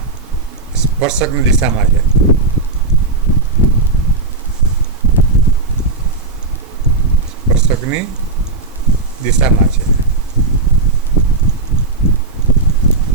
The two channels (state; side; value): quieter; left; 3.5 dB